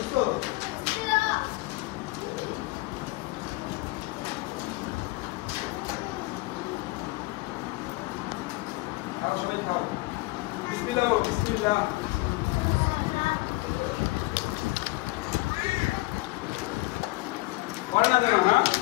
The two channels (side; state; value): right; quieter; 22.1 dB